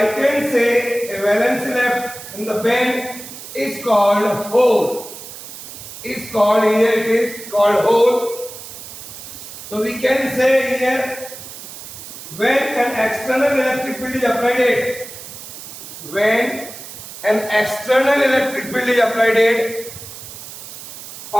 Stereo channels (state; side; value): noise; right; hiss, 13 dB below the sound